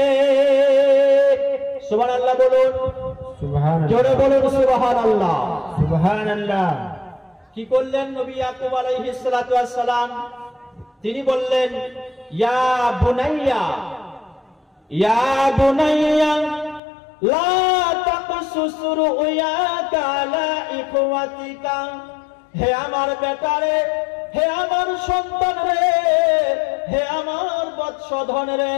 সুবহানাল্লাহ বলুন, সুবহানাল্লাহ, জোরে বলুন সুবহানাল্লাহ, সুবহানাল্লাহ। কি করলেন নবী ইয়াকুব আলাইহিস সালাতু ওয়াস সালাম? তিনি বললেন, ইয়া বুনাইয়া, ইয়া বুনাইয়া লা তাকসুস রুয়াকা আলা ইখওয়াতিকা, হে আমার বেটারে, হে আমার সন্তান রে, হে আমার বৎসধন রে,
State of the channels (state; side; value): drops out; right; at 16.8 s